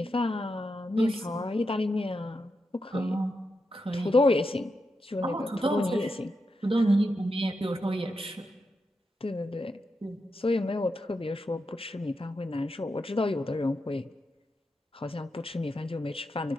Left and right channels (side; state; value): both; normal; correlation 0.86